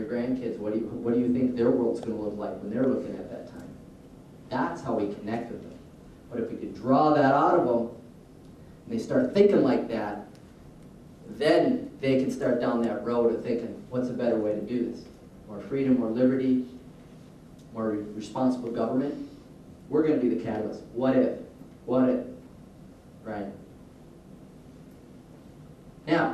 grandkids? What do you think their world's going to look like when they're looking at that time? That's how we connect with them. But if we could draw that out of them, and they start thinking like that, then they can start down that road of thinking, what's a better way to do this? More freedom, more liberty, more responsible government. We're going to be the catalyst. What if? What if? Right?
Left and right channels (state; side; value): identical; both; correlation 1.00